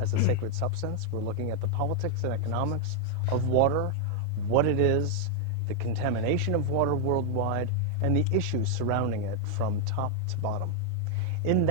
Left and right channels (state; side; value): different; both; correlation 0.00